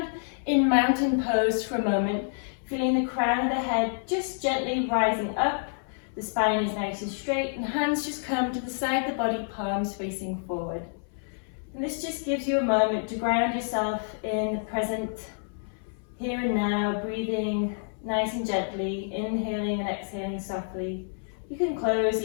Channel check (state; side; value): silent; right; 59 dB below the other